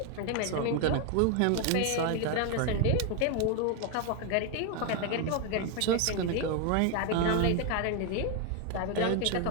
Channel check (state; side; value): different; both; correlation 0.01